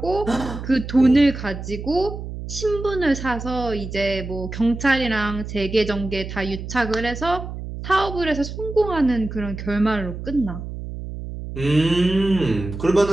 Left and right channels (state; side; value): noise; right; hum, 8 dB below the sound